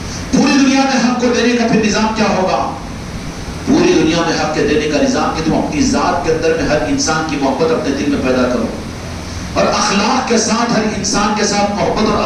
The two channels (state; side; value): identical; both; correlation 1.00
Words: پوری دنیا میں حق کو دینے کا پھر نظام کیا ہوگا؟ پوری دنیا میں حق کے دینے کا نظام کہ تم اپنی ذات کے اندر میں ہر انسان کی محبت اپنے دل میں پیدا کرو، اور اخلاق کے ساتھ ہر انسان کے ساتھ محبت اور